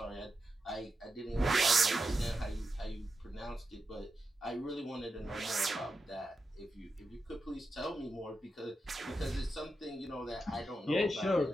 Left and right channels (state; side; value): normal; both; correlation 0.88